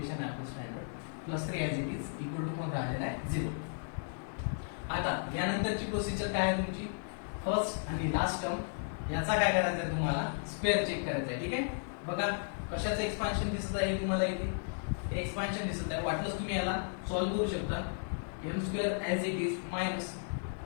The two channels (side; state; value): right; silent; digital silence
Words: आहे आपलं standard. +3 as it is equal to कोण राहिलेला आहे? 0. यानंतरची प्रोसिजर काय आहे तुमची, फर्स्ट आणि लास्ट टर्म याचा काय करायचं आहे तुम्हाला, स्क्वेअर चेक करायचा आहे. ठीक आहे, बघा कशाचं एक्सपान्शन दिसत आहे तुम्हाला इथे, एक्सपान्शन दिसत आहे. वाटलंच तुम्ही याला सॉल्व्ह करू शकता. M square as it is minus